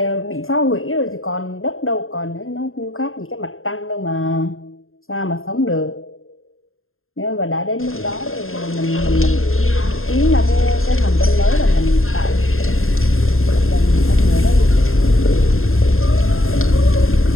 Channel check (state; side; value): late; right; 0.61 ms